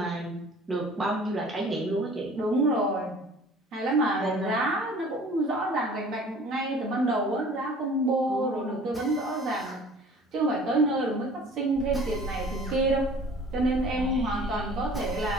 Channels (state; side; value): normal; both; correlation 0.48